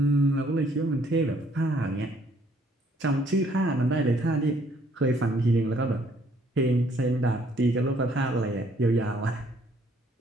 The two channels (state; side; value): normal; both; correlation 0.64